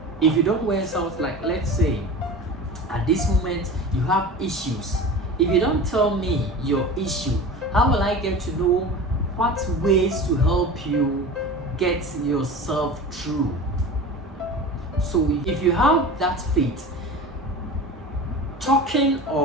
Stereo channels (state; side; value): normal; both; correlation 0.34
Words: If you don't west out, like let's say at this moment you have issues, if you don't tell me your issue, how will I get to know what ways to help you get yourself through? So if you have that faith, talking